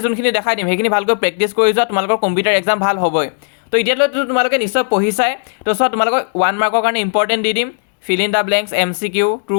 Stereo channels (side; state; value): right; silent; digital silence